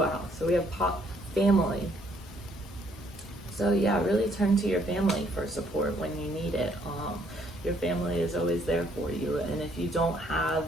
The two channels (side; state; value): both; normal; correlation 0.67